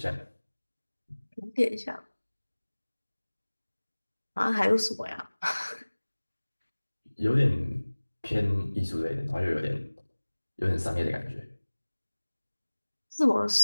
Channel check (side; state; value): both; inverted; correlation -1.00